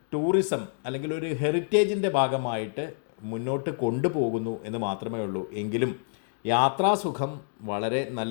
ടൂറിസം അല്ലെങ്കിൽ ഒരു ഹെറിറ്റേജിൻ്റെ ഭാഗമായിട്ട് മുന്നോട്ട് കൊണ്ടുപോകുന്നു എന്ന് മാത്രമേ ഉള്ളൂ. എങ്കിലും യാത്രാസുഖം വളരെ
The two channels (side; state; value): right; silent; digital silence